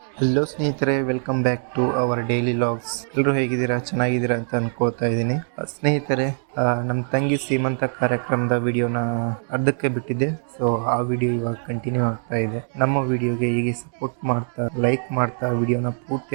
Hello ಸ್ನೇಹಿತರೆ, welcome back to our daily logs. ಎಲ್ಲರೂ ಹೇಗಿದ್ದೀರಾ? ಚೆನ್ನಾಗಿದ್ದೀರಾ ಅಂತ ಅನ್ಕೋತಾ ಇದ್ದೀನಿ. ಸ್ನೇಹಿತರೆ, ನಮ್ಮ ತಂಗಿ ಸೀಮಂತ ಕಾರ್ಯಕ್ರಮದ ವಿಡಿಯೋನ ಅರ್ಧಕ್ಕೆ ಬಿಟ್ಟಿದ್ದೆ. ಸೊ ಆ ವಿಡಿಯೋ ಇವಾಗ ಕಂಟಿನ್ಯೂ ಆಗ್ತಾ ಇದೆ. ನಮ್ಮ ವಿಡಿಯೋಗೆ ಹೀಗೆ ಸಪೋರ್ಟ್ ಮಾಡ್ತಾ, ಲೈಕ್ ಮಾಡ್ತಾ ವಿಡಿಯೋನ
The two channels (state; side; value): silent; left; 58 dB below the other